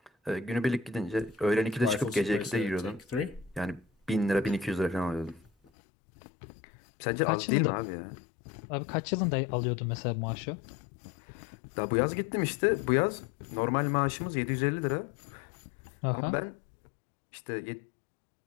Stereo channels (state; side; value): drops out; right; at 5.7 s